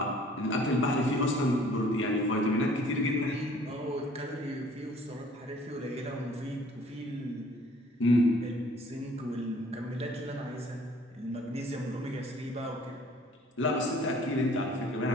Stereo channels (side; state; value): both; normal; correlation 0.55